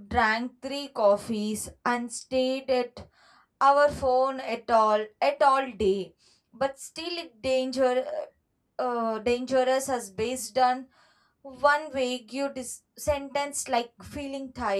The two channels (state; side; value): identical; both; correlation 1.00